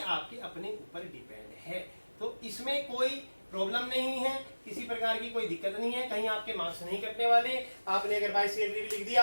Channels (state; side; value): inverted; both; correlation -1.00